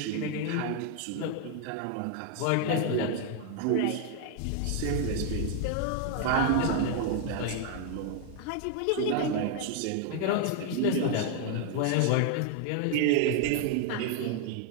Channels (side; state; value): both; different; correlation 0.00